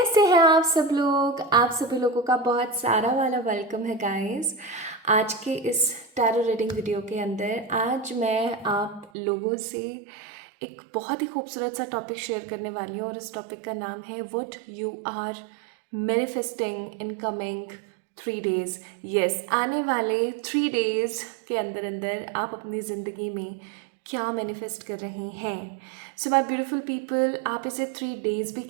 हैं आप सब लोग? आप सभी लोगों का बहुत सारा वाला वेलकम है गाइस। आज के इस टैरो रीडिंग वीडियो के अंदर आज मैं आप लोगों से एक बहुत ही खूबसूरत सा टॉपिक शेयर करने वाली हूँ और इस टॉपिक का नाम है what you are manifesting in coming 3 days। Yes, आने वाले 3 days के अंदर अंदर आप अपनी ज़िंदगी में क्या मैनिफेस्ट कर रहे हैं। सो माई ब्यूटिफुल पीपल, आप इसे 3 days भी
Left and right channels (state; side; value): drops out; left; at 9.1 s